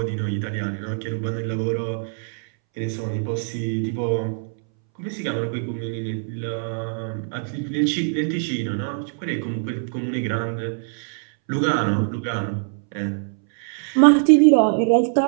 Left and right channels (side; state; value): left; silent; 63 dB below the other